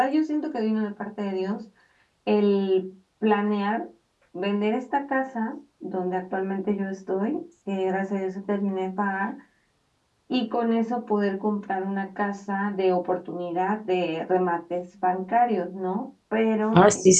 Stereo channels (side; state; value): both; identical; correlation 1.00